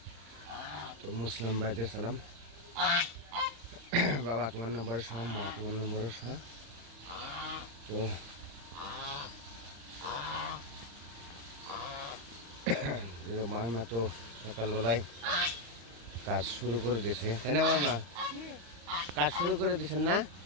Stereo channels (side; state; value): left; late; 35 ms